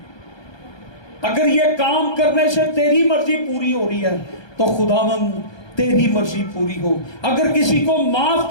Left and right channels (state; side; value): late; right; 1.2 ms